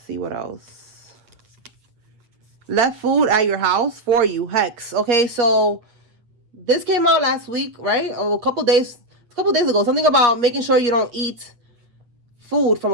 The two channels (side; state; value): left; late; 8.4 ms